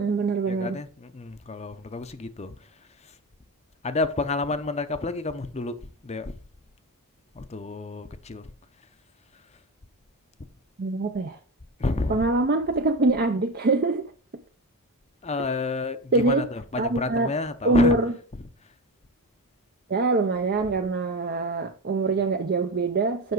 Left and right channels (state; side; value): normal; both; correlation 0.21